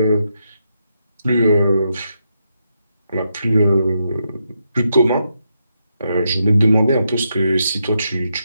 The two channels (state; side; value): inverted; both; correlation -0.82